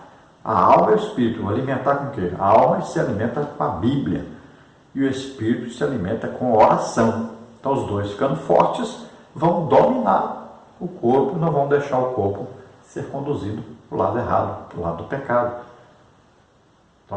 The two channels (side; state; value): both; identical; correlation 1.00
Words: a alma e o espírito. Vou alimentar com o quê? A alma se alimenta com a Bíblia e o espírito se alimenta com oração. Então os dois, ficando fortes, vão dominar o corpo e não vão deixar o corpo ser conduzido para o lado errado, para o lado do pecado. Então,